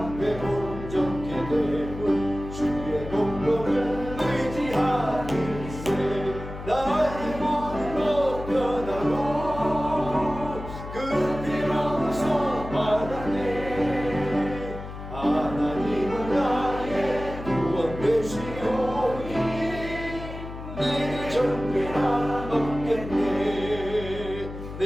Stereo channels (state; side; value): noise; left; hum, 10 dB below the sound